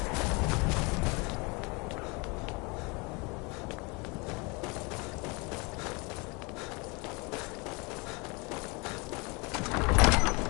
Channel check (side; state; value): right; quieter; 28.6 dB